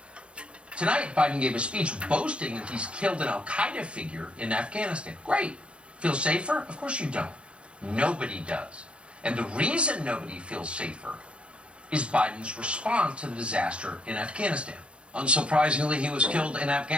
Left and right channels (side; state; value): left; late; 0.058 ms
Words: Tonight, Biden gave a speech boasting that he's killed an al-Qaeda figure in Afghanistan. Great. Feel safer? Of course you don't. Nobody does. And the reason nobody feels safer is Biden's response to the disaster in Afghanistan. Unsurprisingly, he was killed in